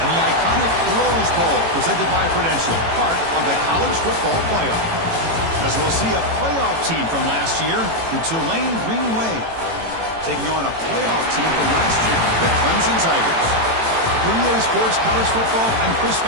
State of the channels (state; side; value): late; left; 18 ms